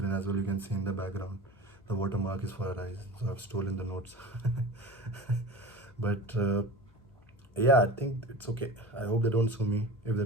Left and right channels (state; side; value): noise; left; hum, 28 dB below the sound